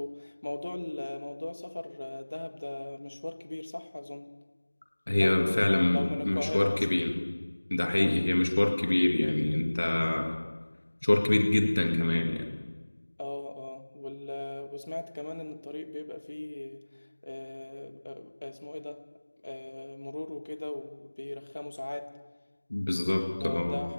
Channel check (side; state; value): both; inverted; correlation -1.00